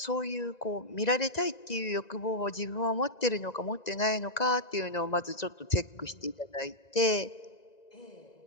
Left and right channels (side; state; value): right; late; 1.9 ms